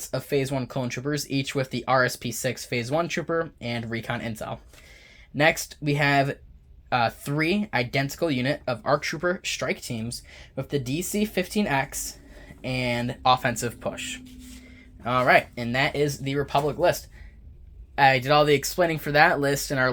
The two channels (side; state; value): both; identical; correlation 1.00